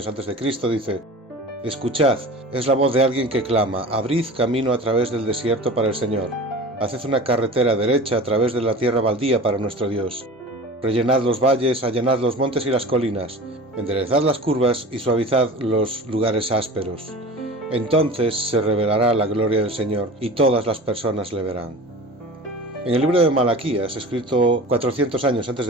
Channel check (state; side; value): normal; both; correlation 0.37